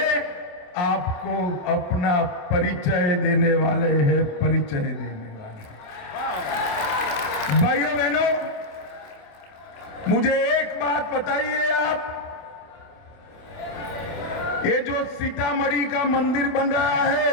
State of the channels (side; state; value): right; late; 28 ms